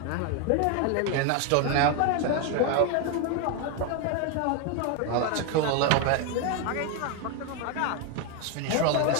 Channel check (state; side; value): different; both; correlation 0.01